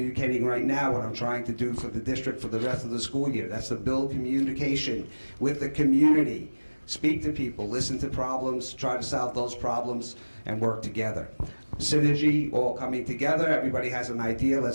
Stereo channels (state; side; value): inverted; both; correlation -1.00